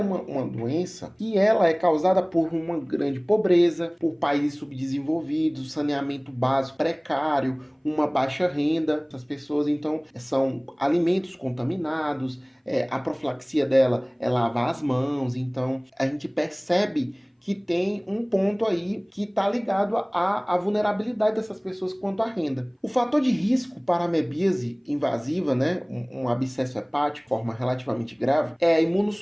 doença que ela é causada por uma grande pobreza, por países subdesenvolvidos, saneamento básico precário, uma baixa renda. Essas pessoas, então, são alimentos contaminados, a profilaxia dela é lavar as mãos. Então, a gente percebe que tem um ponto aí que está ligado à vulnerabilidade dessas pessoas quanto à renda. O fator de risco para a amebíase invasiva, né, um abscesso hepático, forma relativamente grave, é a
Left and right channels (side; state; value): both; identical; correlation 1.00